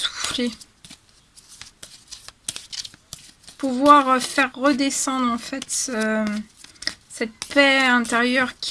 Pouvoir faire redescendre en fait cette paix intérieure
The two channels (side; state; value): both; identical; correlation 1.00